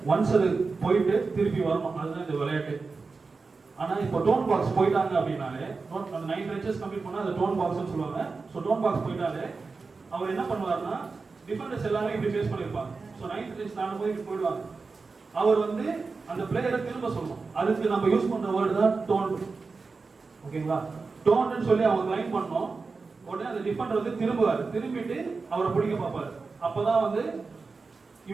ஒன்ஸ் அது போயிட்டு திருப்பி வரணும், அதுதான் இந்த விளையாட்டு. ஆனா இப்போ டோன் பாக்ஸ் போயிட்டாங்க அப்படின்னாலே, அந்த 9 பெஞ்சஸ் கம்ப்ளீட் பண்ணா அது டோன் பாக்ஸ்னு சொல்லுவாங்க. ஸோ டோன் பாக்ஸ் போயிட்டாலே அவர் என்ன பண்ணுவாருன்னா, டிஃபெண்டர்ஸ் எல்லாமே இப்படி ஃபேஸ் பண்ணியிருப்பாங்க. ஸோ 9th பெஞ்ச் தாண்டும் போது இப்படி போயிடுவாங்க. அவர் வந்து அந்த பிளேயரை திரும்ப சொல்லணும். அதுக்கு நம்ம யூஸ் பண்ற வேர்டு தான் டோன். ஓகேங்களா? டோன்னு சொல்லி அவங்க லைன் பண்ணோம். உடனே அந்த டிஃபெண்டர் வந்து திரும்புவார், திரும்பிட்டு அவரை பிடிக்க பார்ப்பாரு. அப்பதான் வந்து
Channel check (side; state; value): left; quieter; 4.3 dB